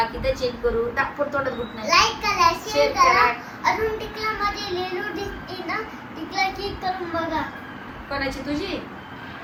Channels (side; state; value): both; identical; correlation 1.00